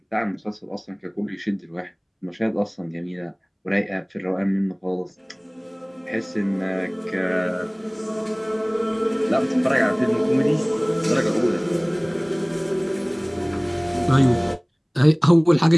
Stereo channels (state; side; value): identical; both; correlation 1.00